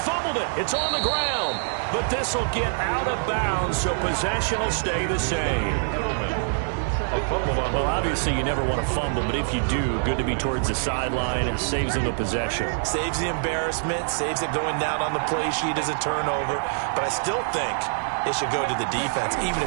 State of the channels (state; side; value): silent; left; digital silence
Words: it. It's on the ground. But this will get out of bounds, so possession will stay the same. Well, obviously you never want to fumble, but if you do, good to be towards the sideline and saves them the possession. Saves the embarrassment, saves it going down on the play sheet as a turnover. But I still think it should go to the defense, even